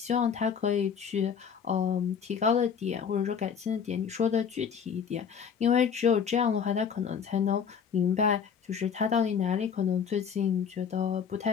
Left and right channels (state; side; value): quieter; right; 7.1 dB